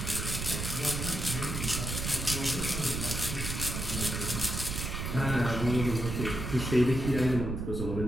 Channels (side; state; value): right; noise; rumble, 3 dB below the sound